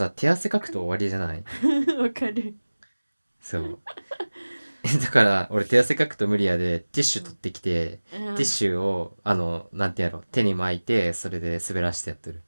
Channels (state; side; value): inverted; both; correlation -1.00